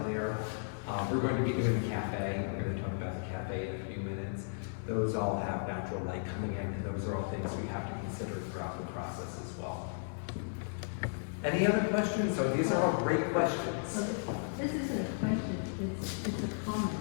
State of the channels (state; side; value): silent; right; digital silence